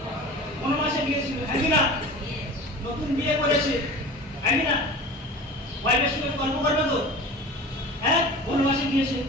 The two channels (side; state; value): both; normal; correlation 0.36